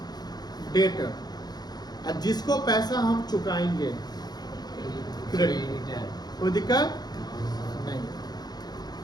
डेटर। और जिसको पैसा हम चुकाएंगे, क्रेडिटर। कोई दिक्कत नहीं।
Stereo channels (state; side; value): late; right; 0.19 ms